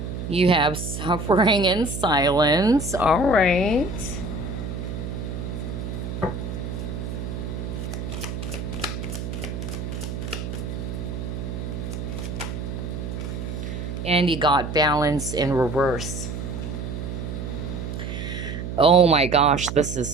You have suffering in silence. All right. And you got balance in reverse. Oh my gosh, this is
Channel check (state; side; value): noise; right; hum, 5 dB below the sound